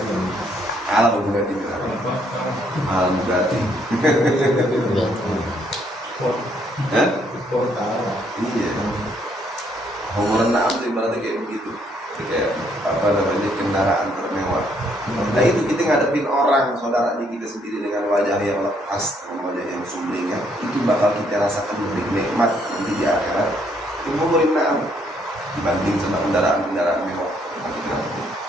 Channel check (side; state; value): both; normal; correlation 0.69